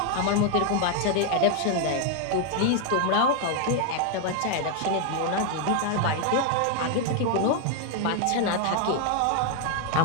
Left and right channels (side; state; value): both; different; correlation 0.00